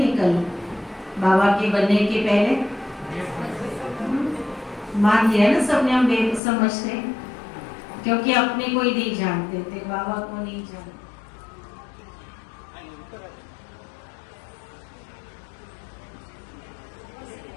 बाबा के बनने के पहले मान लिया ना सबने हम बेसमझते, क्योंकि अपने को ही नहीं जानते थे, बाबा को नहीं जानते।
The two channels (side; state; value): right; drops out; at 6.4 s